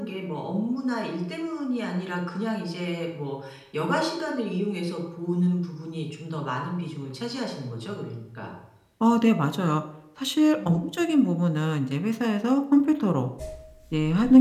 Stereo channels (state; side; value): identical; both; correlation 1.00